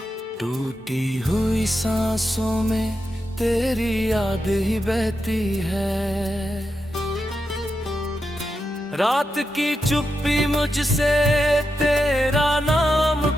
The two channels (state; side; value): normal; both; correlation 0.87